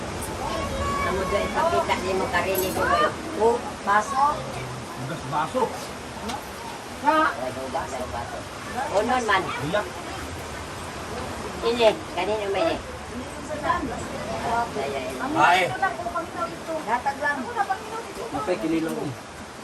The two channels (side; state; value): both; identical; correlation 1.00